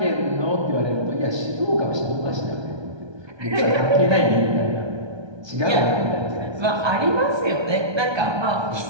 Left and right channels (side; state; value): left; late; 1.2 ms